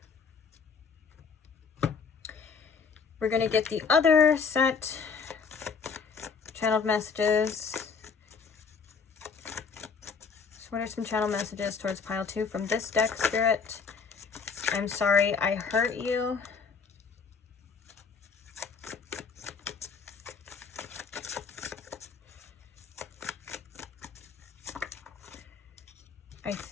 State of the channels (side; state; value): right; quieter; 5.6 dB